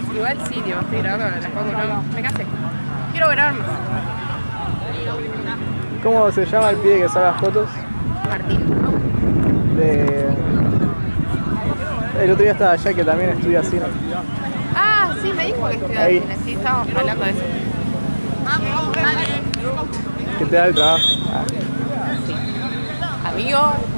Igual sí, tío, estoy grabando con las fotos, no, me casé. Quiero grabar más. ¿Cómo se llama el pibe que saca fotos? Martín. De. El otro día estaba allá que también estudia cine. Ah, sí, me dijo que estudiaba Ahí. cine, sí, estábamos hablando de eso. Que te da el trabajo. Ah. Amigo,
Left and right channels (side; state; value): both; inverted; correlation -1.00